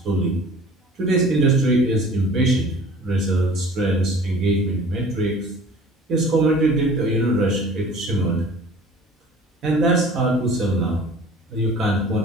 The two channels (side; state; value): both; normal; correlation 0.46